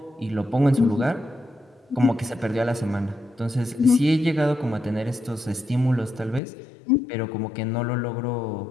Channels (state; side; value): drops out; right; at 6.4 s